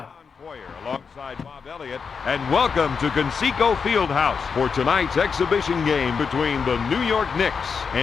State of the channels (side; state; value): right; quieter; 5.8 dB